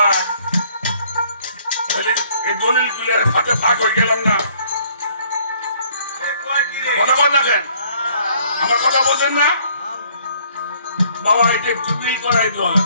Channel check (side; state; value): both; inverted; correlation -0.61